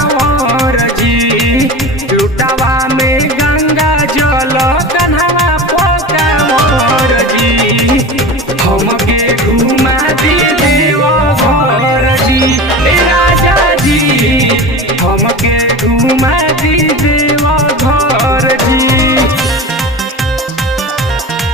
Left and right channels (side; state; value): both; normal; correlation 0.31